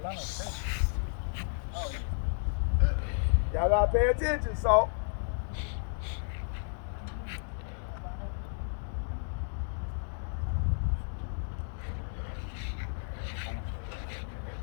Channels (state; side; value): silent; right; digital silence